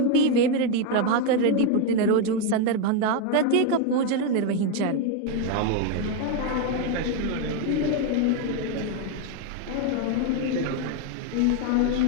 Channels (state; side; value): different; both; correlation 0.02